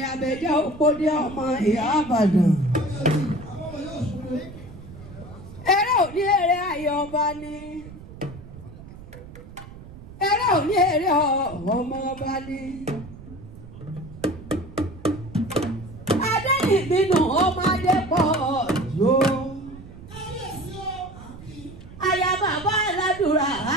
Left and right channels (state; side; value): noise; right; rumble, 16 dB below the sound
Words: abẹ́jẹ́ òpódé ọmọ ìyá Ìbàdàn. Eré ò ní eré ayọ̀ ọba ni. Eré ò ní eré ọmọ ọba ni. Adéyìnbínú ọmọdé pọ̀ yóò. Aya bàbá aládùúrà